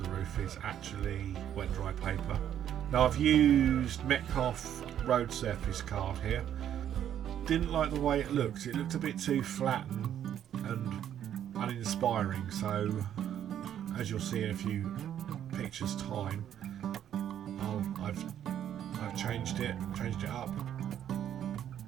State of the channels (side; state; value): left; quieter; 10.2 dB